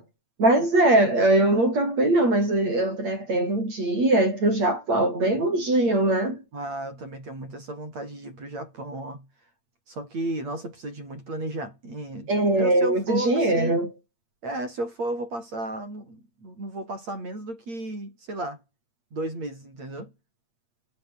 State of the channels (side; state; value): left; late; 8.7 ms